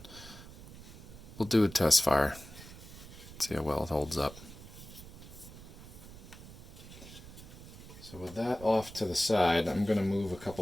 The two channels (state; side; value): noise; right; rumble, 16 dB below the sound